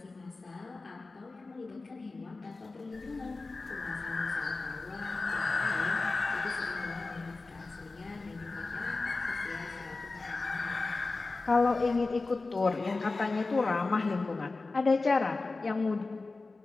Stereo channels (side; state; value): right; quieter; 3.6 dB